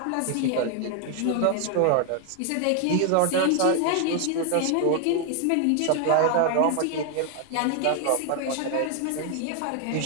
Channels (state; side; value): different; both; correlation 0.00